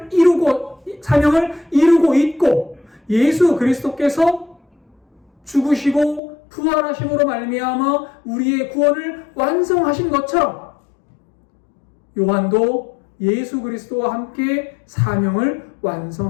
이루고 있고 예수 그리스도께서 죽으시고 부활하심으로 말미암아 우리의 구원을 완성하신 것처럼 요한도 예수 그리스도와 함께 사명을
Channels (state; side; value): drops out; right; at 6.2 s